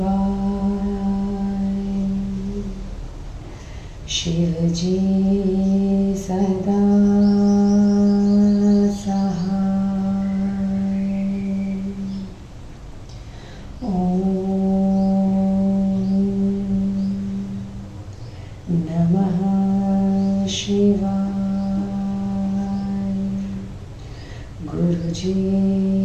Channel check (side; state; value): both; identical; correlation 1.00